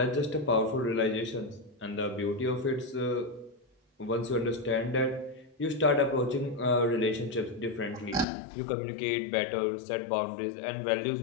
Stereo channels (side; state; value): right; drops out; at 8.2 s